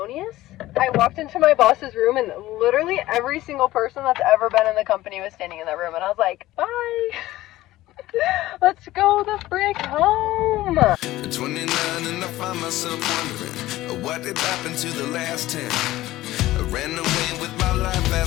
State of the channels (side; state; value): right; quieter; 16.4 dB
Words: I walked into my boss's room and literally every single person that's ever been in the company was standing in that room, and I was like, bye. Let's go the frick home. 29 and I find myself wondering what did happen to the last 10. I ran away with my life,